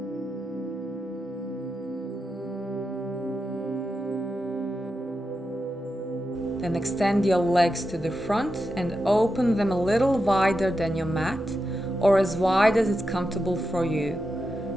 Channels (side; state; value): both; normal; correlation 0.88